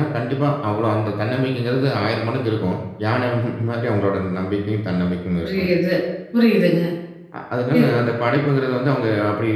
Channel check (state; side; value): identical; both; correlation 1.00